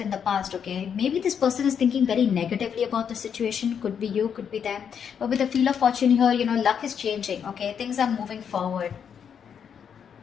the past, okay? Maybe this person is thinking very negatively about the situation. Could be you, could be them. But with the Wheel of Fortune here, luck is changing, okay? Things are moving forward.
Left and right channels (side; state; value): right; quieter; 7.6 dB